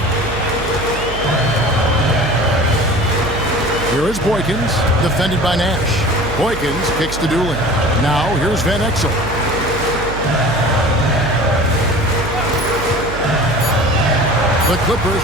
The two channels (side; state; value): right; noise; hum, 9 dB below the sound